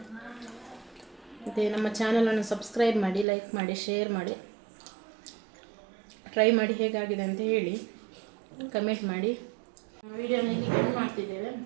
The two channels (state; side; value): drops out; left; at 3.2 s